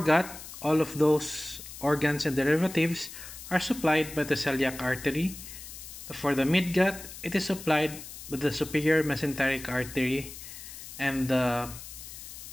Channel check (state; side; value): noise; left; hiss, 13 dB below the sound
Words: all of those organs and derivatives are supplied by the celiac artery. For the midgut, it is supplied by the superior mesenteric artery, and the